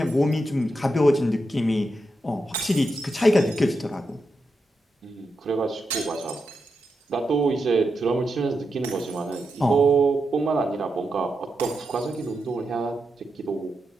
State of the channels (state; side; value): normal; both; correlation 0.86